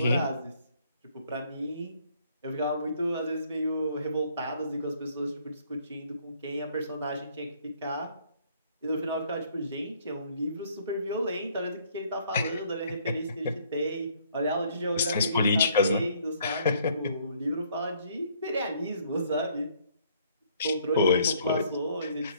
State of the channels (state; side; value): inverted; both; correlation -0.63